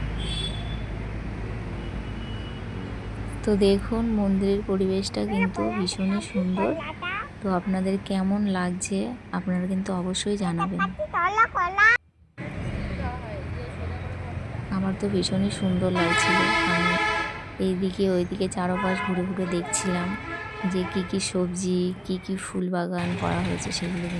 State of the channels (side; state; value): both; identical; correlation 1.00